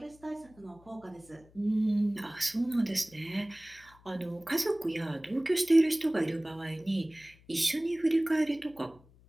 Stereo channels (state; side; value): noise; left; hum, 27 dB below the sound